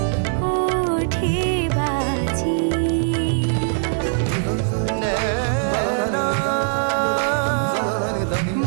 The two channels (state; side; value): silent; left; 65 dB below the other